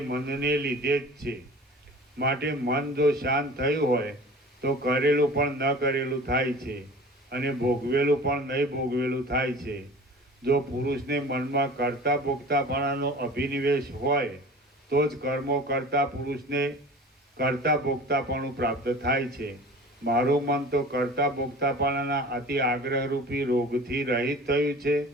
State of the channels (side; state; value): both; normal; correlation 0.40